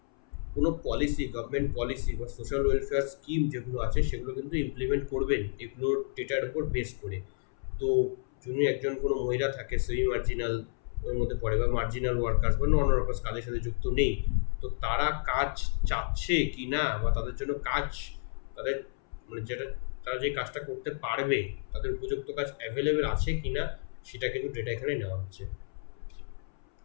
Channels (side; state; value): right; silent; 57 dB below the other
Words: কোনো পলিসি, গভর্নমেন্ট পলিসি বা সোশ্যাল ওয়েলফেয়ার স্কিম যেগুলো আছে সেগুলো কিন্তু ইমপ্লিমেন্ট করবেন এগুলোর ডেটার উপর বেস করে। তো যদি একজন কোনো মহিলা থাকে সেমি মার্জিনাল ওর মধ্যে পড়ে, বা মার্জিনাল ওয়ার্কার্স বা নন ওয়ার্কার্স কাজের সাথে যুক্ত নেই, তো তারা কাজ চাচ্ছে কি না, বা তাদের জন্য কাজ, তাদের মানে যেটা তারা যে কাজটা করতে পারবে তাদের উপযুক্ত কাজ অ্যাভেলেবেল আছে কি না, সেটা কিন্তু ডেটা এখানে নেওয়া হচ্ছে।